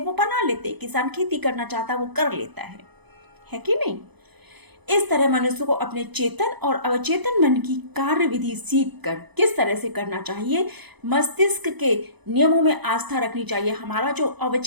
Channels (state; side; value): late; left; 0.99 ms